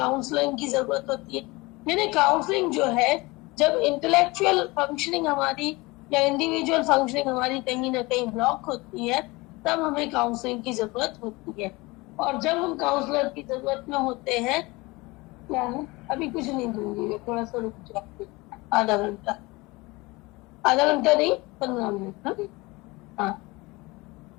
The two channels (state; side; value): quieter; right; 23.2 dB